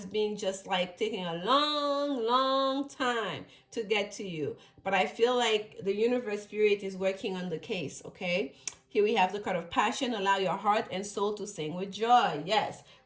been just like taking a long time to get to you. But I feel like the universe spirit is working on the case, okay? Here we have the card of passion. Allow your heart and soul to sing with joy. Yes,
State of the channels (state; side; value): identical; both; correlation 1.00